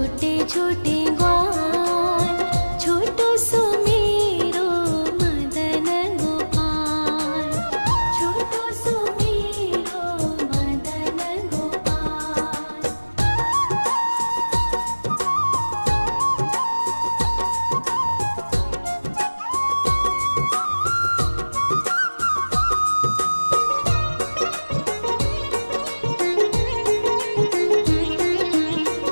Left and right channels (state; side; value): inverted; both; correlation -1.00